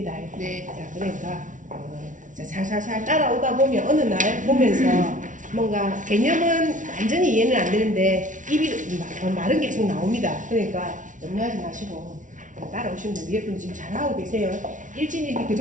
네. 자, 그러니까 자, 살살살 따라오다 보면 어느 날 보면서 뭔가 개념은 완전히 이해는 안 되는데 입이 말은 계속 나옵니다. 그러니까 염려하지 마시고 따라오시면 돼요. 위에 분은 지금 잘하고 계세요. 일진일기 그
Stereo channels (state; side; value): late; left; 0.37 ms